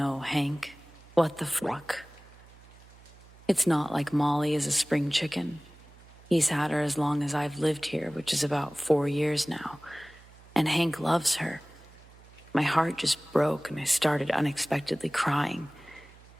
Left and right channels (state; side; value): noise; right; hum, 23 dB below the sound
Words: Hank. What the fuck? It's not like Molly is a spring chicken. He's had her as long as I've lived here, which is about 4 years now, and Hank loves her. My heart just broke and I started unexpectedly crying.